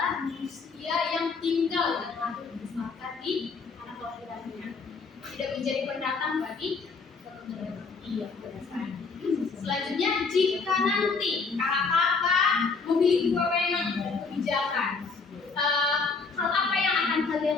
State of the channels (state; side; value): quieter; right; 4.6 dB